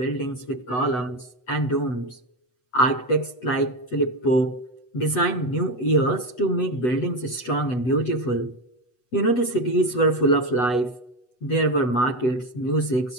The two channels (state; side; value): late; right; 8.1 ms